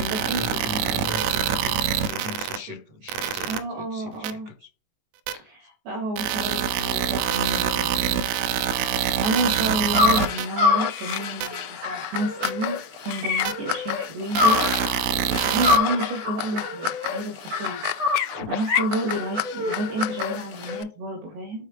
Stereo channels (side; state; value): left; late; 19 ms